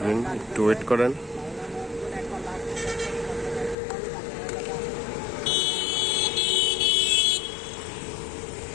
একটু ওয়েট করেন।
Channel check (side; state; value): right; drops out; at 3.8 s